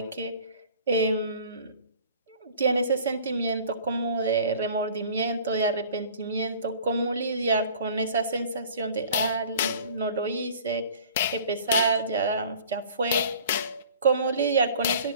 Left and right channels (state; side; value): inverted; both; correlation -0.48